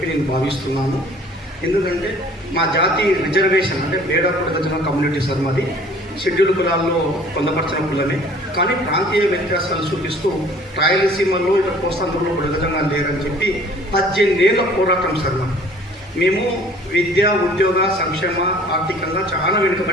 నేను భావిస్తున్నాను. ఎందుకంటే మా జాతి రిజర్వేషన్ అంటే బేడా పుడగజన కమ్యూనిటీ సార్ మాది షెడ్యూల్డ్ కులాల్లో పొందపరిచిన కులమే. కానీ ప్రాంతీయ వ్యత్యాసాలు చూపిస్తూ రాయలసీమలో ఇటు కోస్తాంధ్రలో పుడగజంగా లేరని చెప్పి 18 ఏళ్ల పోరాటం సార్ మేము విద్య ఉద్యోగ సంక్షేమ ఆర్థికంగా చాలా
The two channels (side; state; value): both; normal; correlation 0.52